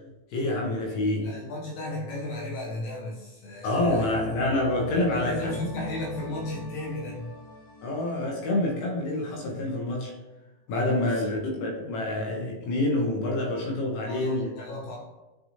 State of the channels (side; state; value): right; late; 18 ms